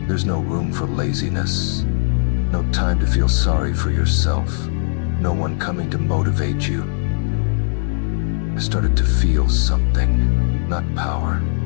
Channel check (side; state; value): right; silent; digital silence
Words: there's no room for laziness. No time to feel sorry for yourself. No one coming to motivate you. I started to feel something. Not power.